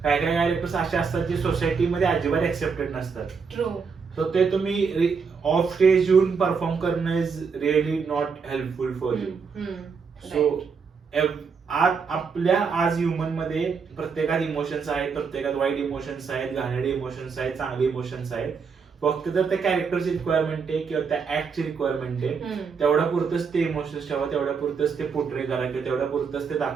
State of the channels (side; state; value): left; quieter; 5.6 dB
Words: काय काय कॅरेक्टर्स असे असतात जे सोसायटीमध्ये अजिबात एक्सेप्टेड नसतात. सो ते तुम्ही ऑफ स्टेज येऊन परफॉर्म करणं is really not helpful for you. So आपल्या आज ह्युमन मध्ये प्रत्येकात इमोशन्स आहेत, प्रत्येकात वाईट इमोशन्स आहेत, घाणेरडे इमोशन्स आहेत, चांगले इमोशन्स आहेत. फक्त तर त्या कॅरेक्टरची रिक्वायरमेंट आहे किंवा त्या ऍक्टची रिक्वायरमेंट आहे, तेवढ्या पुरतच ते इमोशन्स ठेवा, तेवढ्या पुरतच ते पोर्ट्रे करा किंवा तेवढ्या पुरतच ते